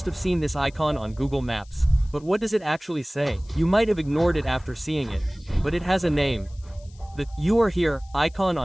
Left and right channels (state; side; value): noise; left; hiss, 29 dB below the sound